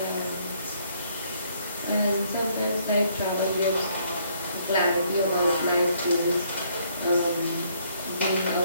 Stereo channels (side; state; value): both; inverted; correlation -0.67